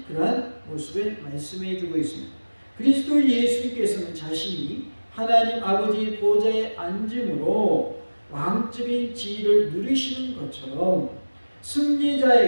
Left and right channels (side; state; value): both; inverted; correlation -1.00